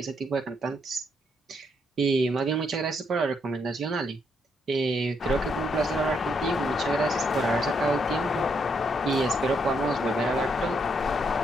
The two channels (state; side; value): normal; both; correlation 0.75